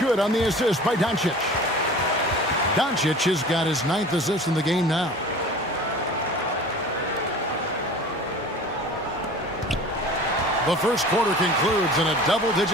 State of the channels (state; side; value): normal; both; correlation 0.41